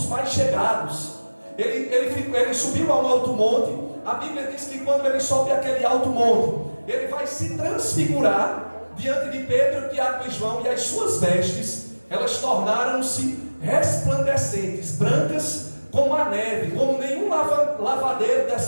mais chegados. Ele subiu a um alto monte. A Bíblia diz que quando ele sobe aquele alto monte, ele vai se transfigurar diante de Pedro, Tiago e João, e as suas vestes, elas tornaram-se resplandecentes, brancas como a neve, como nenhum lavadeiro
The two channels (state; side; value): inverted; both; correlation -1.00